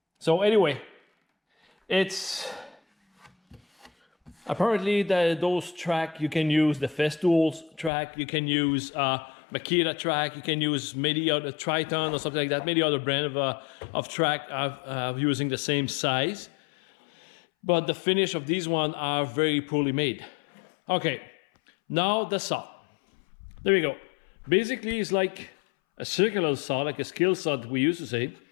So anyway, it's apparently those track, you can use the Festool's track, you can use Makita track, you can use maybe a Triton or something like that, maybe other brand of track using the same size. But the finish of these ones are very poorly made. Okay, now the saw. There we go. Basically, it's like a circular saw, like a skill saw that we used to say.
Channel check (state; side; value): drops out; right; at 7.9 s